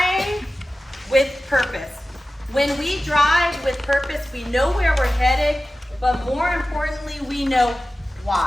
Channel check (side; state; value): both; normal; correlation 0.95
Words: with purpose. When we drive with purpose, we know where we're headed, but more importantly, we know